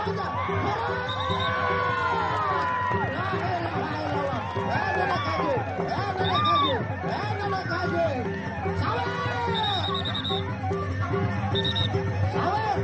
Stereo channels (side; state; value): both; identical; correlation 1.00